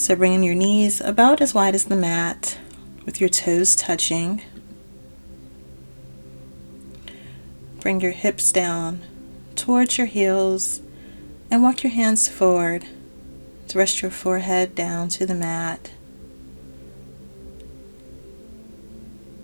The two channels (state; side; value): inverted; both; correlation -1.00